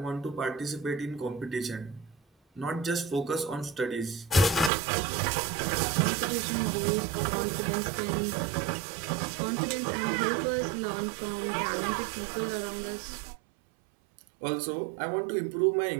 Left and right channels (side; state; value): left; drops out; at 4.7 s